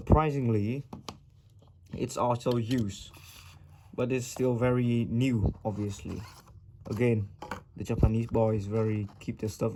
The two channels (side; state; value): both; identical; correlation 1.00